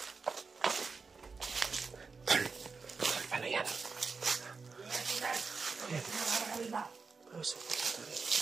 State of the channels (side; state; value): left; quieter; 4.7 dB